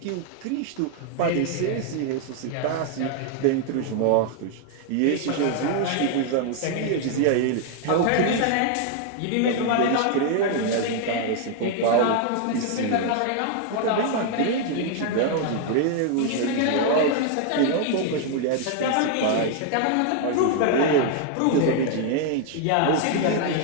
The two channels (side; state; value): both; different; correlation 0.00